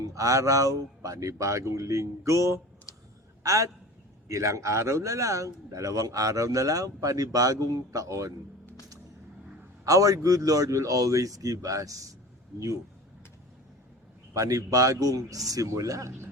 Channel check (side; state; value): both; normal; correlation 0.37